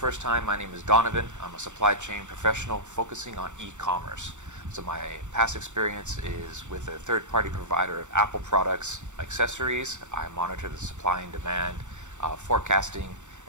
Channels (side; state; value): left; late; 0.85 ms